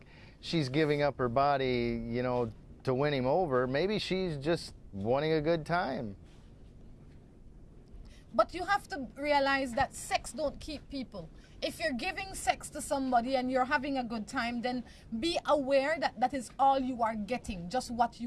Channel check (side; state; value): both; identical; correlation 1.00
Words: she's giving up her body, you know, to win him over. Maybe she's just wanting a good time. But you have to realize that sex don't keep people. If you're giving sex to somebody and you're having a good time, then be aware that that is all you are getting, just what